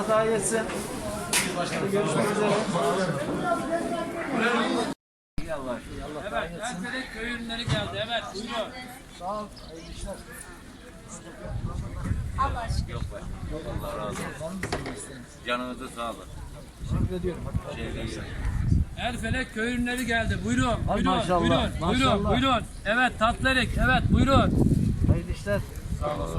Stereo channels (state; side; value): identical; both; correlation 1.00